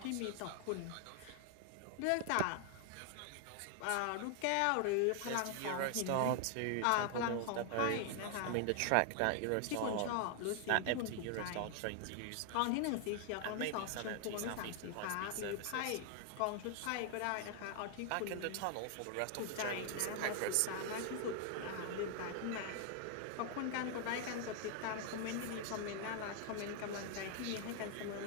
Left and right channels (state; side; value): different; both; correlation 0.00